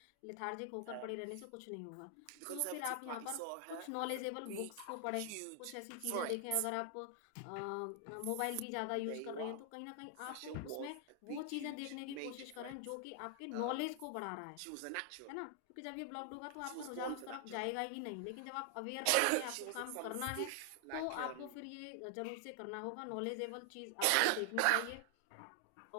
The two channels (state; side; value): different; both; correlation 0.00